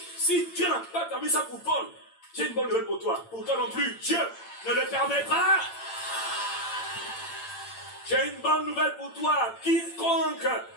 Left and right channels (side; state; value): right; late; 8.8 ms